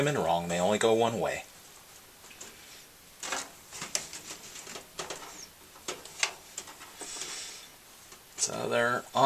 in wrong. They only go one way. So they're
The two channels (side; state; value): both; identical; correlation 1.00